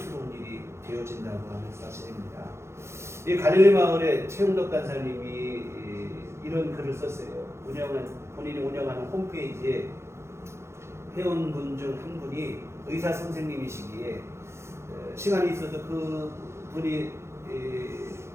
일이 되어진다고 하는 사실입니다. 이 갈릴리 마을에 최용덕 간사님이 이런 글을 썼어요. 본인이 운영하는 홈페이지에 회원분 중 한 분이 의사 선생님이시기에 시간이 있어서 그 분이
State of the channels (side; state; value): left; late; 0.13 ms